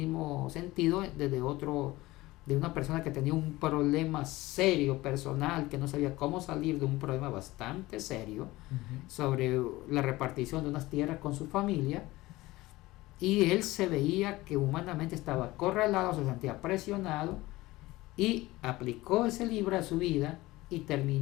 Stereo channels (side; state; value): right; quieter; 19.0 dB